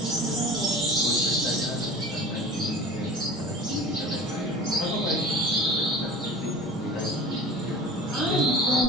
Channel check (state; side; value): normal; both; correlation 0.38